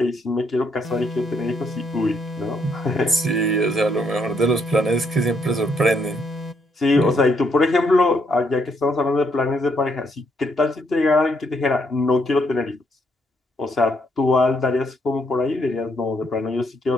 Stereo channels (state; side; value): normal; both; correlation 0.73